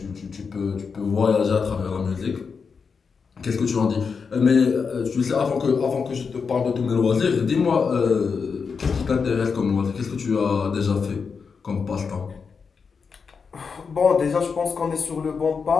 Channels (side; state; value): right; quieter; 5.5 dB